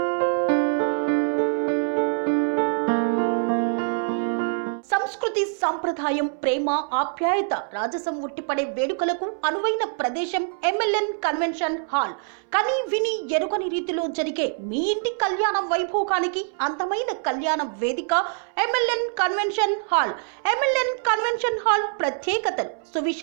సంస్కృతి, సాంప్రదాయం, ప్రేమ, ఆప్యాయత, రాజసం ఉట్టిపడే వేడుకలకు అనువైన ప్రదేశం MLN కన్వెన్షన్ హాల్. కని విని ఎరుగని రీతిలో జరిగే మీ ఇంటి కళ్యాణ వైభోగానికి అందమైన కళ్యాణ వేదిక MLN convention hall. MLN convention hall ప్రత్యేకతలు:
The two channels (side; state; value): left; silent; 62 dB below the other